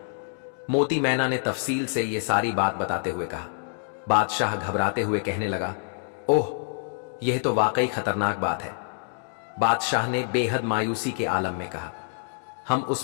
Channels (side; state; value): right; silent; digital silence